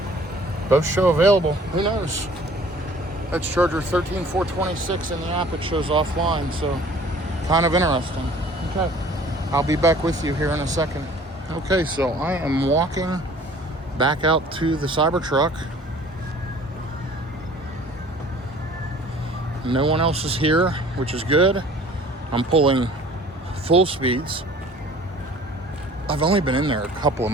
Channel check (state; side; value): normal; both; correlation 0.51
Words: Both show available. Who knows? That's charger 13426 in the app. It shows offline, so kind of interesting. Okay, I'll be back with you here in a second. Okay, so I am walking back out to the Cybertruck. No one else is here, which is good. I'm pulling full speeds. I've only been in there a couple of